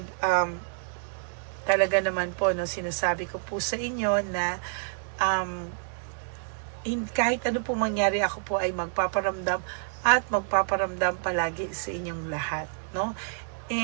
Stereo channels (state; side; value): silent; left; digital silence